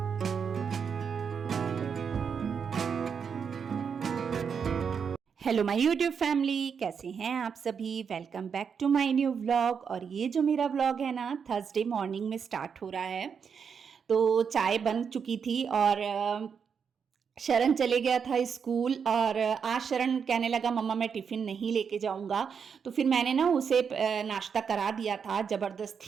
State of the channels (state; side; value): quieter; left; 6.6 dB